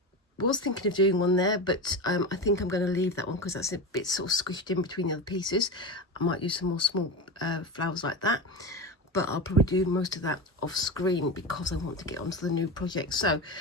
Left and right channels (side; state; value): both; normal; correlation 0.22